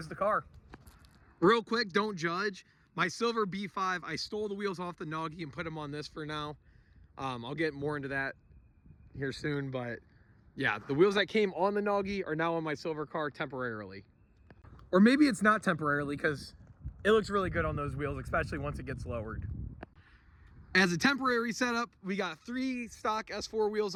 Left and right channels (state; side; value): identical; both; correlation 1.00